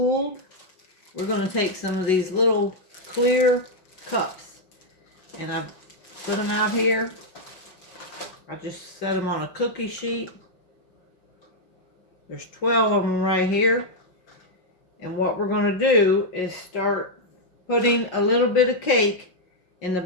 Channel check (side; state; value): right; late; 5.4 ms